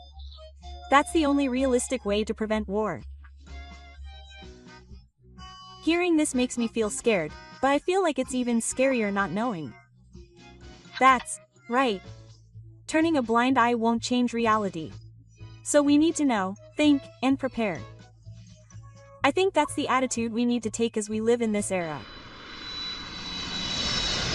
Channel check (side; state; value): both; identical; correlation 1.00